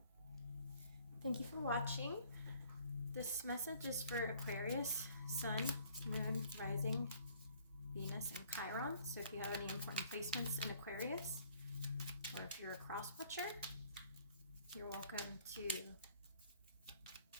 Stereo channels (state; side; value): inverted; both; correlation -0.57